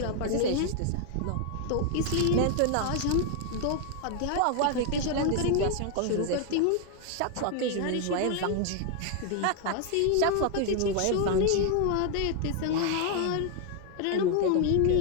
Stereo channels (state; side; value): different; both; correlation 0.00